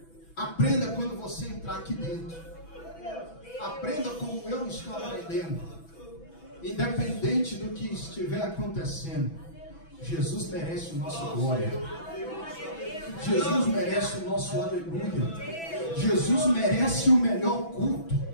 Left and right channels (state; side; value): late; right; 6.0 ms